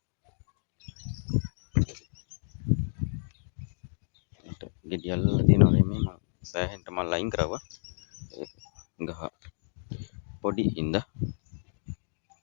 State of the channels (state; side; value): silent; right; digital silence